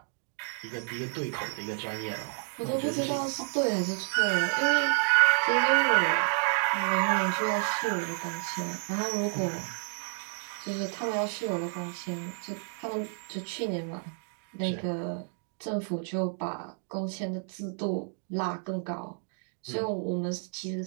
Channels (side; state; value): left; silent; 58 dB below the other